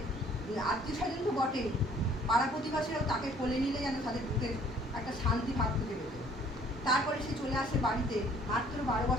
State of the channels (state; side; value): normal; both; correlation 0.58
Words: আত্মীয় স্বজন তো বটেই, পাড়া প্রতিবাসীরাও তাকে কোলে নিলে যেন তাদের বুকে একটা শান্তি ভাব খুঁজে পেত। তারপরে সে চলে আসে বাড়িতে। মাত্র 12